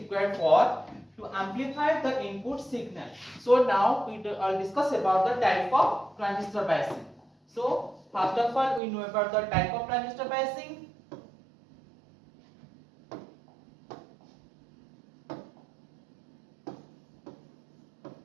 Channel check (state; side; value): drops out; left; at 8.8 s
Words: for to amplify the input signal. So now we will discuss about the type of transistor biasing. So first of all, we know about the type of transistor biasing.